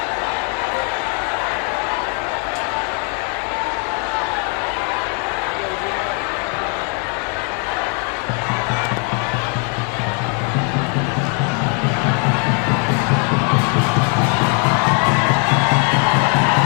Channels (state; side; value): quieter; right; 33.5 dB